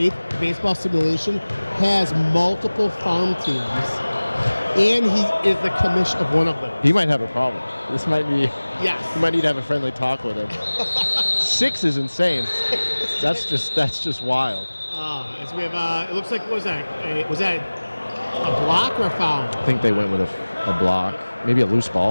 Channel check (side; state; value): both; inverted; correlation -1.00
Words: baseball simulation has multiple farm teams. And he is the commish of one of them. He might have a problem. This might be. Yes. You might need to have a friendly talk with him. 6 is insane. That's just wild. As we have, it looks like, what was that? Was that a block or a foul? I think they went with a block, maybe a loose